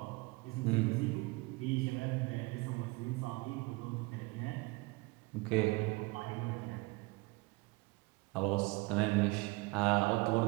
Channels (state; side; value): quieter; left; 24.8 dB